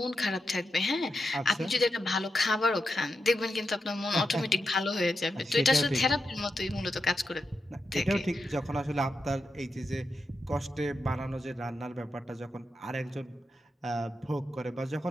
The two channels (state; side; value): normal; both; correlation 0.87